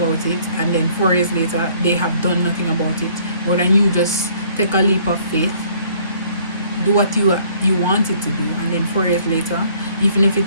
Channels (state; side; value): inverted; both; correlation -0.59